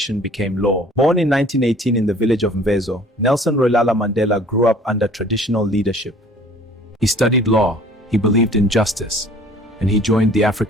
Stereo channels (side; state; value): both; normal; correlation 0.51